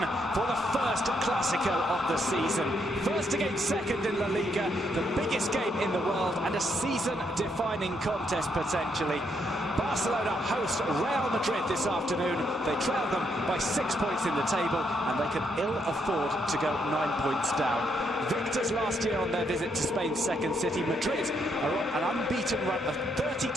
for the first Clásico of the season. First against second in La Liga, the biggest game in the world and a season-defining contest potentially. Barcelona host Real Madrid this afternoon. They trail them by 6 points in the table and they can ill afford to go 9 points down. Victors last year on their visit to Spain's second city, Madrid are on an unbeaten run of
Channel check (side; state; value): both; normal; correlation 0.76